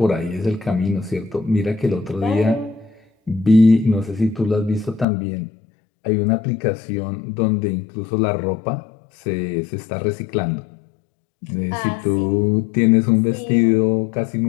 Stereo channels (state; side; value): drops out; right; at 5.1 s